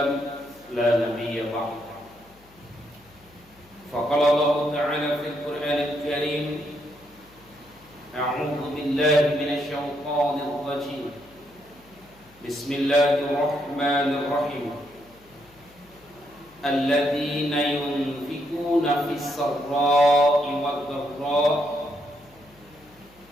لا نبي بعده. فقال الله تعالى في القرآن الكريم أعوذ بالله من الشيطان الرجيم بسم الله الرحمن الرحيم الذين ينفقون في السراء والضراء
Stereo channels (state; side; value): noise; left; hum, 28 dB below the sound